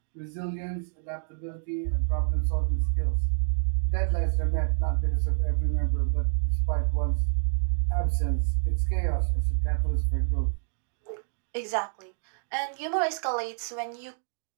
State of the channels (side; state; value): left; silent; digital silence